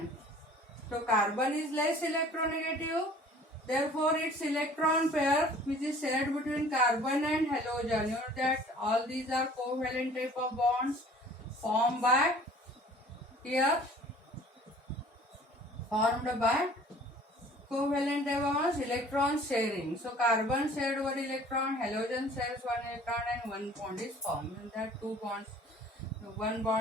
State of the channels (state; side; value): normal; both; correlation 0.50